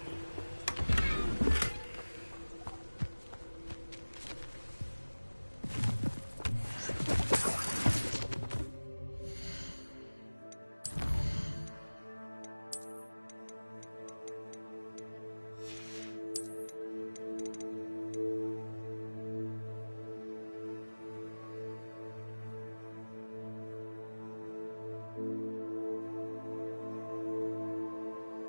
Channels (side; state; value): both; inverted; correlation -1.00